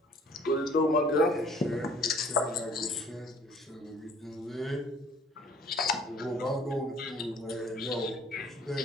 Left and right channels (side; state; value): both; normal; correlation 0.54